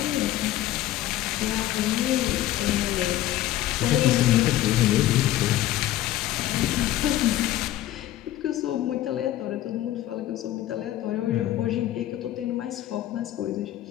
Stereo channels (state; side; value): quieter; right; 14.1 dB